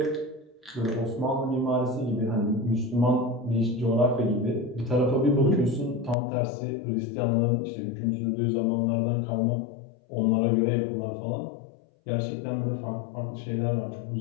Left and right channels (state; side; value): drops out; right; at 6.2 s